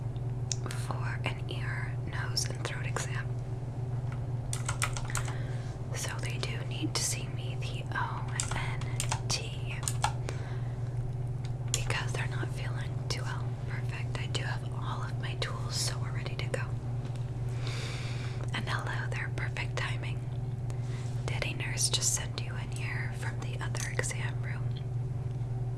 for an ear, nose, and throat exam. So they do need to see me, the ONT, because they're not feeling too well. Perfect. I do have all of my tools, so we're ready to go. And hello there, perfect timing. Did a nurse just send you in here from the other exam room?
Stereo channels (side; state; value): both; identical; correlation 1.00